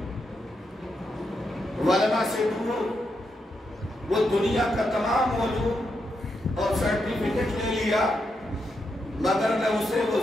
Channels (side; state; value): both; normal; correlation 0.83